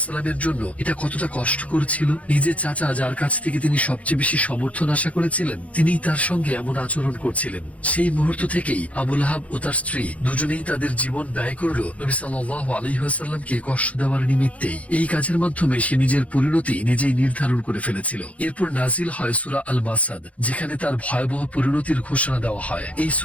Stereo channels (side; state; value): right; late; 0.065 ms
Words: জন্য এটা কতটা কষ্টকর ছিল? নিজের চাচা, যার কাছ থেকে তিনি সবচেয়ে বেশি সমর্থন আশা করেছিলেন, তিনিই তার সঙ্গে এমন আচরণ করছিলেন। সেই মুহূর্ত থেকেই আবু লাহাব ও তার স্ত্রী দুজনেই তাদের জীবন ব্যয় করল নবী সাল্লাল্লাহু আলাইহি ওয়াসাল্লামকে কষ্ট দেওয়ার নিমিত্তেই। এই কাজের মাধ্যমে সে নিজের পরিণতি নিজেই নির্ধারণ করে ফেলেছিল। এরপর নাজিল হয় সূরা আল মাসাদ, যেখানে তার ভয়াবহ পরিণতির ঘোষণা দেওয়া হয়। এই